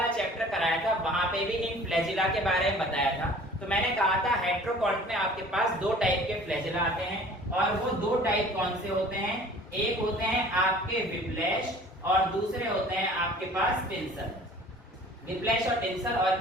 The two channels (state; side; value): normal; both; correlation 0.48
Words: चैप्टर कराया था वहां पे भी इन फ्लैजिला के बारे में बताया था, तो मैंने कहा था हेट्रोकॉन्ट में आपके पास दो टाइप के फ्लैजिला आते हैं, और वो दो टाइप कौन से होते हैं, एक होते हैं आपके विप्लैश और दूसरे होते हैं आपके पास टिंसल। विप्लैश और टिंसल,